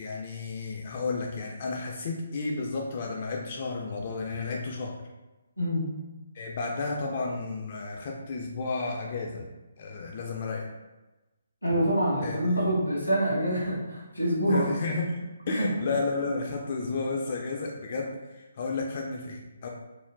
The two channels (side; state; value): both; inverted; correlation -0.73